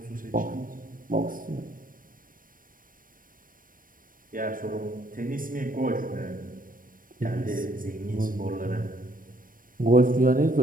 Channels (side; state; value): left; late; 0.40 ms